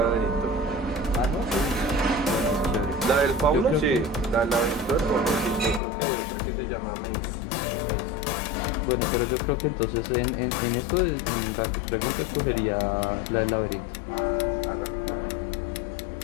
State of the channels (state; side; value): drops out; right; at 5.8 s